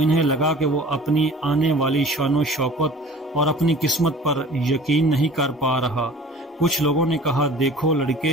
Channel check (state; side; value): normal; both; correlation 0.45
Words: لگا کہ وہ اپنی آنے والی شان و شوکت اور اپنی قسمت پر یقین نہیں کر پا رہا۔ کچھ لوگوں نے کہا، دیکھو